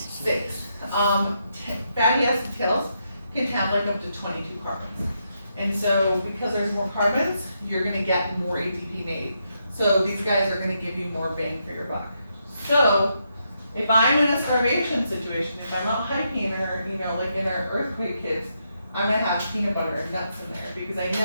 6. Fatty acid tails can have like up to 22 carbons. And so because there's more carbons, you're gonna get more ATP made. So these guys are gonna give you more bang for your buck. So if I'm in a starvation situation, if I'm out hiking or, like in our earthquake kits, I'm gonna have peanut butter and nuts in there because I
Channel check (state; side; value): inverted; both; correlation -0.81